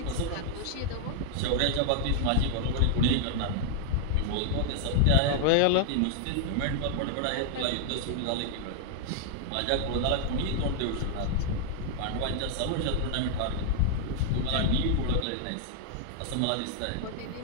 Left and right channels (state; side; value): different; both; correlation -0.01